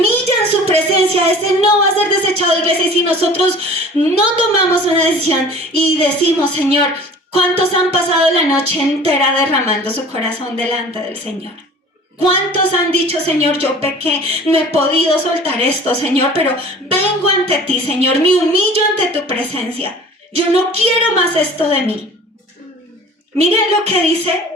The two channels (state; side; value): normal; both; correlation 0.45